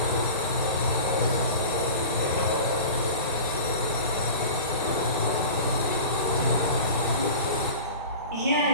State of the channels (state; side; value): inverted; both; correlation -0.35